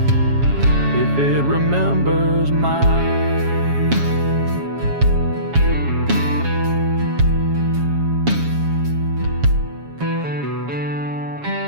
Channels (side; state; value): left; late; 7.2 ms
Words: if it remembers mine.